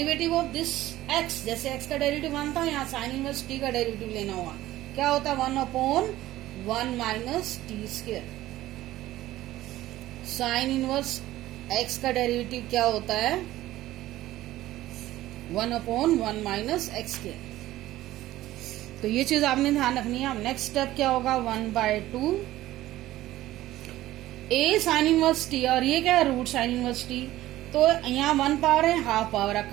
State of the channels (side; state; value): left; quieter; 15.3 dB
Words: of this x, जैसे x का डेरिवेटिव 1 था, यहाँ साइन इनवर्स t का डेरिवेटिव लेना होगा, क्या होता है, 1/1 minus T square. Sine inverse x का डेरिवेटिव क्या होता है, 1/1 माइनस एक्स स्क्वायर। तो ये चीज आपने ध्यान रखनी है। अब नेक्स्ट स्टेप क्या होगा, 1/2 a साइन इनवर्स t, और ये क्या है, रूट साइन इनवर्स t। तो यहाँ 1 पावर है, हाफ पावर है,